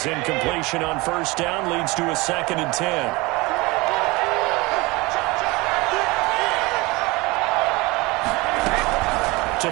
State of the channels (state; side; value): quieter; left; 23.4 dB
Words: incompletion on first down leads to a 2nd and 10. To